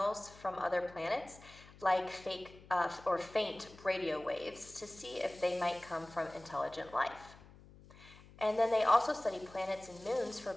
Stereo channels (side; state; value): left; noise; hum, 21 dB below the sound